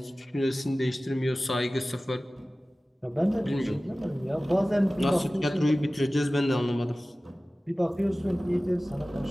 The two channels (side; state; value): both; normal; correlation 0.97